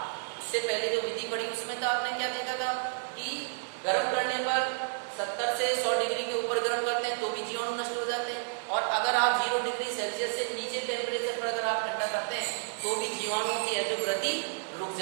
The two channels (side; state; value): left; silent; digital silence